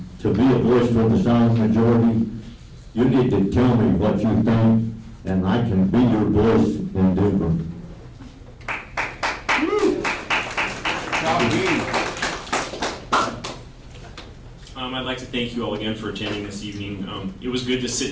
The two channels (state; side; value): identical; both; correlation 1.00